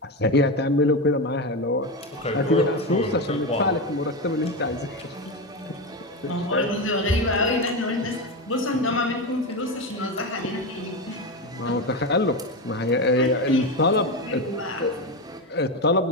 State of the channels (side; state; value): both; normal; correlation 0.15